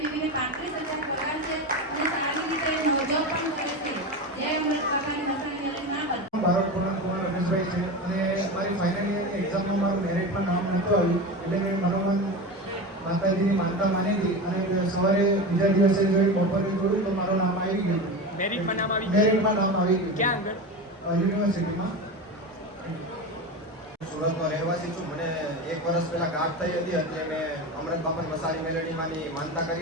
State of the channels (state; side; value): normal; both; correlation 0.24